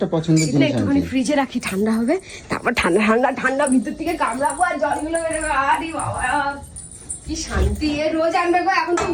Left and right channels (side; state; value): both; identical; correlation 1.00